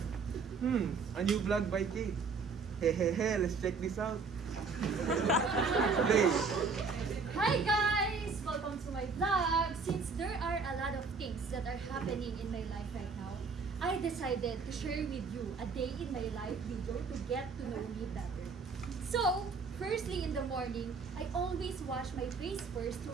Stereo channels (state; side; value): quieter; left; 4.8 dB